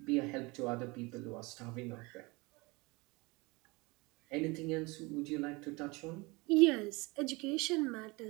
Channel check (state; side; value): quieter; left; 25.2 dB